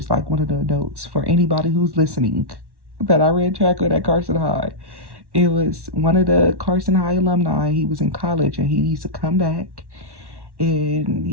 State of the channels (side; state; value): left; late; 1.1 ms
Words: like one of the adults. For anybody who's listening, that I ran track with at Carson High. It was one of the Carson High alumni. He was in college, and he used to come back, and